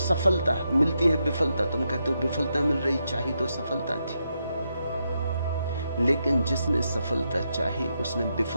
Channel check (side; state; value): both; inverted; correlation -0.83